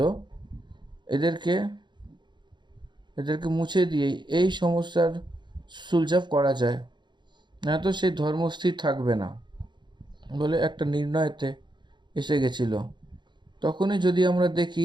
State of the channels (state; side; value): late; left; 0.22 ms